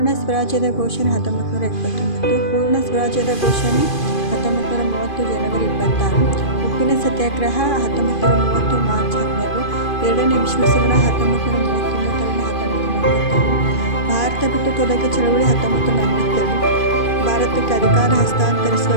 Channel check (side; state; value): right; late; 2.5 ms